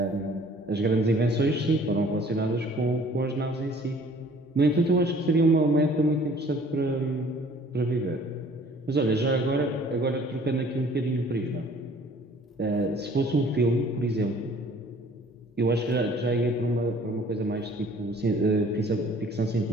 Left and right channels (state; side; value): normal; both; correlation 0.54